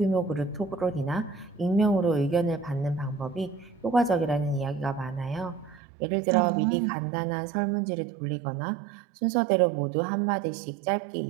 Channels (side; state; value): left; drops out; at 5.8 s